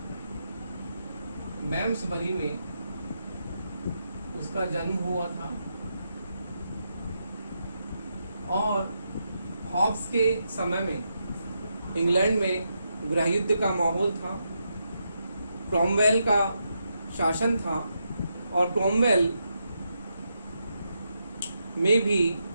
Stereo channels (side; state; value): both; inverted; correlation -0.83